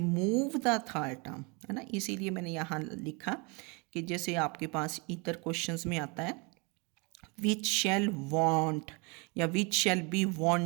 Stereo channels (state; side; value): quieter; left; 30.2 dB